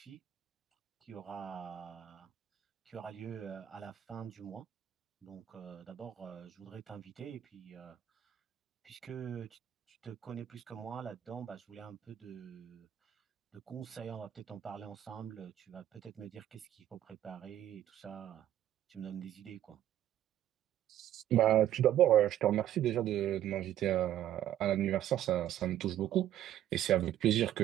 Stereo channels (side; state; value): left; quieter; 11.8 dB